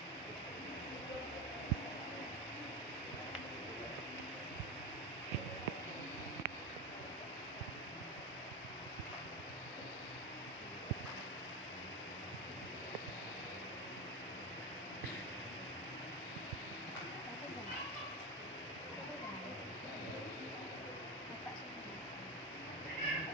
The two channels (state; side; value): normal; both; correlation 0.18